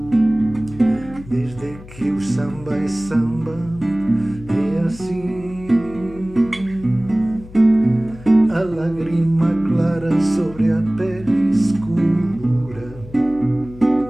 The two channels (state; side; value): noise; left; hum, 18 dB below the sound